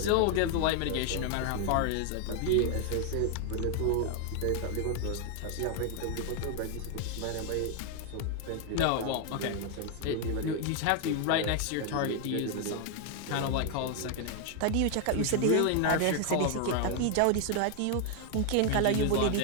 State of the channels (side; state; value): both; different; correlation 0.00